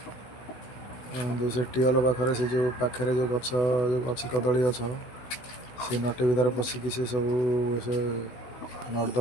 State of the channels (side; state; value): right; late; 16 ms